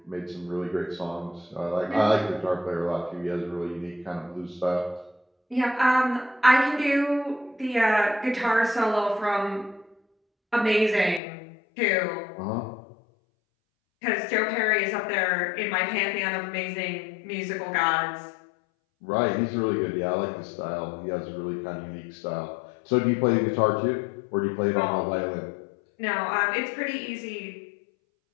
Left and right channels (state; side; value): drops out; right; at 11.2 s